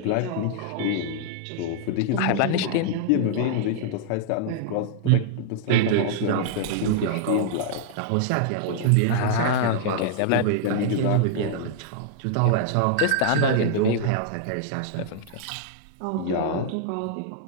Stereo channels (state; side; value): different; both; correlation -0.01